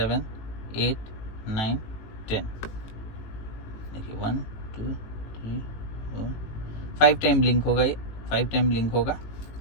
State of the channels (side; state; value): right; late; 18 ms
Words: 8 9 10। देखिए 1 2 3 4 5 टाइम ब्लिंक होगा, ये 5 टाइम ब्लिंक होगा,